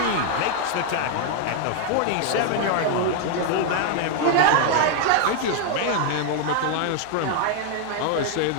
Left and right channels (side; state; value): both; different; correlation 0.00